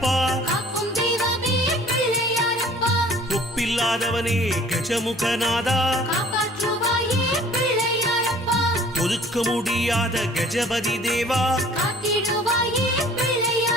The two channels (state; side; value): normal; both; correlation 0.51